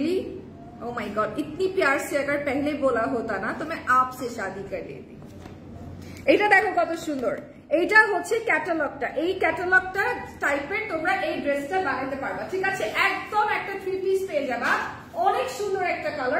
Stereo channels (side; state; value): both; identical; correlation 1.00